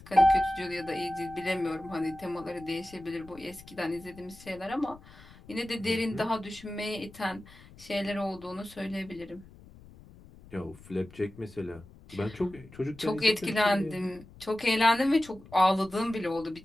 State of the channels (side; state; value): left; noise; rumble, 21 dB below the sound